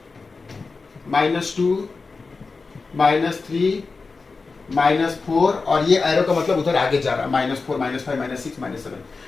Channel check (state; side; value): quieter; right; 4.2 dB